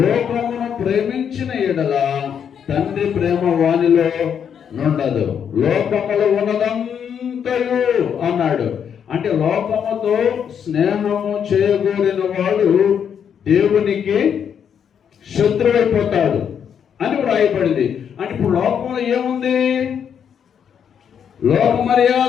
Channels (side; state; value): right; quieter; 8.0 dB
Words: ప్రేమించిన ఎడల తండ్రి ప్రేమ వానిలో నుండదు. లోకములో ఉన్నదంతయు అన్నాడు. అంటే లోకముతో స్నేహము చేయగోరిన వాడు దేవునికి శత్రువైపోతాడు అని వ్రాయబడింది. అంటే ఇప్పుడు లోకంలో ఏముంది? లోక